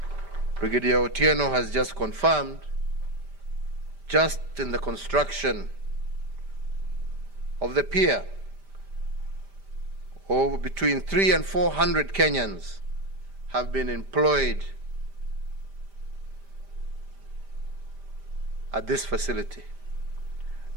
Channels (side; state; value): left; late; 5.0 ms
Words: Brigadier Otieno, has just confirmed, just in the construction of the pier, over between 300 and 400 Kenyans have been employed at this facility.